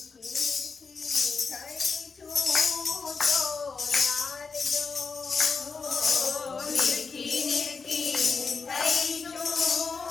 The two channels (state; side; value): quieter; right; 4.9 dB